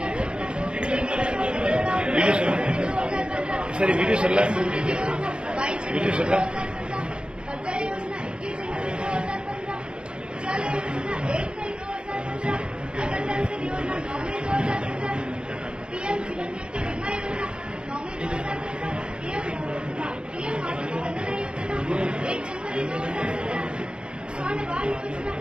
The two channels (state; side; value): late; left; 0.053 ms